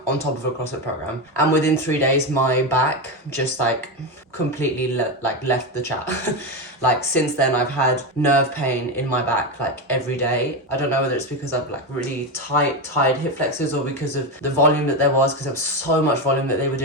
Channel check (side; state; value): both; normal; correlation 0.14